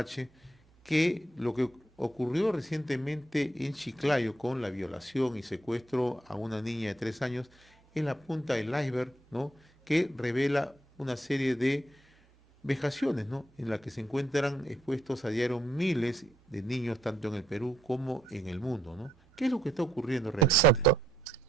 que lo que ocurrió recientemente en Chiclayo con la violación y secuestro a una niña de 3 años es la punta del iceberg, ¿no?, que revela una serie de vejaciones, ¿no?, en la que se encuentran expuestos a diario miles de niños, tanto en el Perú como en el mundo, ¿no? ¿Qué es lo que está ocurriendo realmente? Exacto.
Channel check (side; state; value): both; normal; correlation 0.74